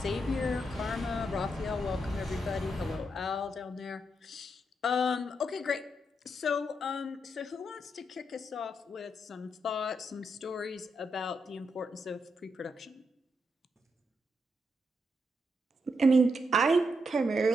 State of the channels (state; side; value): normal; both; correlation 0.81